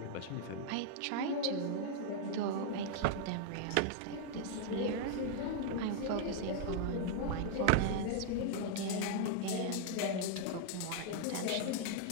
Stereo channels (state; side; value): different; both; correlation -0.01